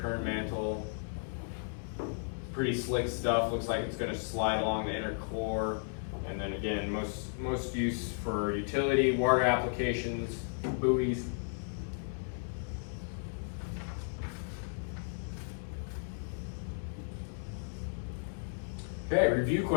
mantle. Pretty slick stuff. Looks like it's going to slide along the inner core. And then again, most use for utility, water applications, buoys. Okay, review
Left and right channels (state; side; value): silent; right; digital silence